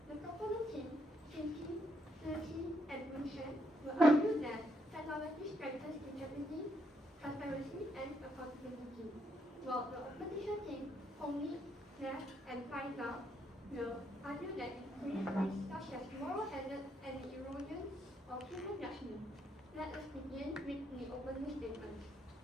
The proponent team, Shinki, Turkey, and Winshen, will argue that technology strengthens integrity, transparency, and accountability, while the opposition team, Hongli, Nash, and Faisal, will argue that it creates risks such as moral hazard and the erosion of human judgment. Let us begin with the opening statement.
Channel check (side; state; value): both; normal; correlation 0.75